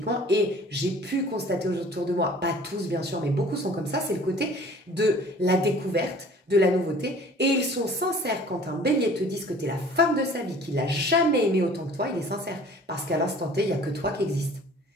et j'ai pu constater autour de moi, pas tous bien sûr, mais beaucoup sont comme ça, c'est le côté de la découverte, de la nouveauté, et ils sont sincères quand un bélier te dit que tu es la femme de sa vie, qu'il n'a jamais aimé autant que toi, il est sincère, parce qu'à l'instant T, il n'y a que toi qui existe.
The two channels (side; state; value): both; normal; correlation 0.49